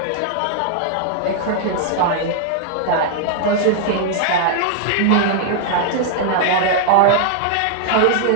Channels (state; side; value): different; both; correlation 0.00